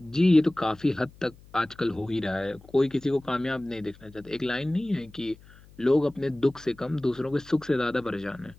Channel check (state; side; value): noise; left; hum, 24 dB below the sound